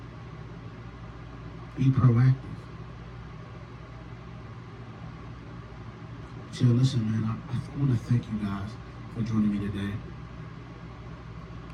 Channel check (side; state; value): both; identical; correlation 1.00